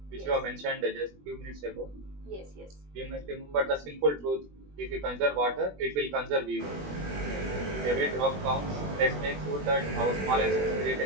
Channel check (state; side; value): late; left; 21 ms